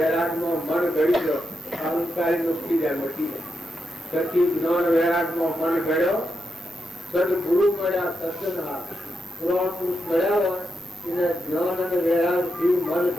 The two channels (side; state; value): right; noise; hiss, 29 dB below the sound